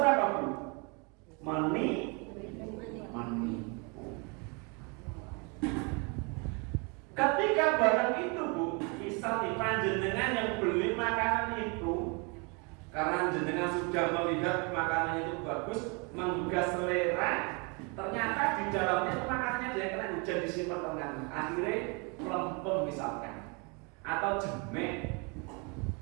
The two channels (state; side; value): quieter; left; 32.1 dB